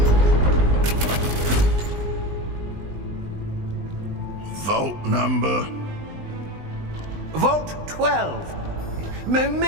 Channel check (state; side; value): late; left; 20 ms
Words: Vault number? Vault 12.